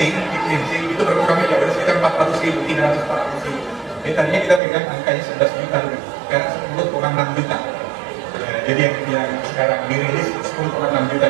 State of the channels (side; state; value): left; drops out; at 4.6 s